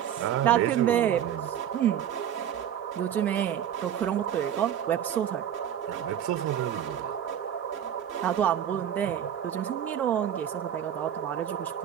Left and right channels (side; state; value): left; quieter; 9.8 dB